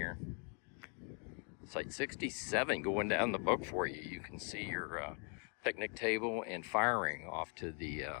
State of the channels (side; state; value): right; quieter; 39.9 dB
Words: Site 67 going down the book for you. You can see your picnic table and fire ring off to